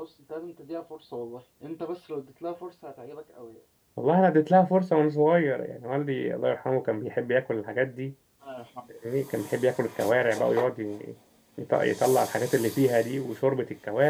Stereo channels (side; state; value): both; identical; correlation 1.00